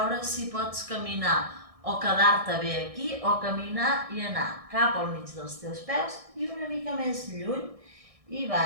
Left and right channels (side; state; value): left; late; 1.6 ms